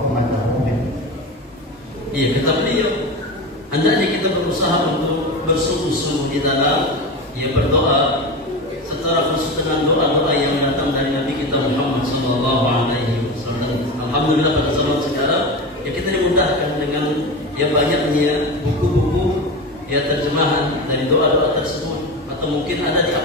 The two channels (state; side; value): normal; both; correlation 0.25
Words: أمته منه. Iya, kata beliau, hendaknya kita berusaha untuk bersungguh-sungguh di dalam berdoa secara khusus dengan doa-doa yang datang dari Nabi kita Muhammad sallallahu alaihi wasallam. Alhamdulillah pada zaman sekarang kita dimudahkan dengan banyaknya buku-buku terjemahan dari doa-doa tersebut, atau mungkin ada di